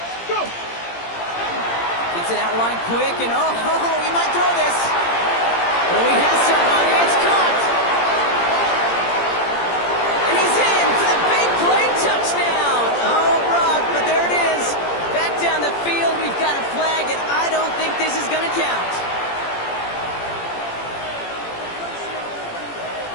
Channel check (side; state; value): right; late; 17 ms